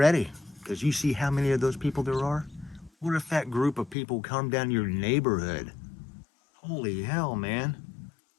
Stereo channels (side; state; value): right; drops out; at 4.0 s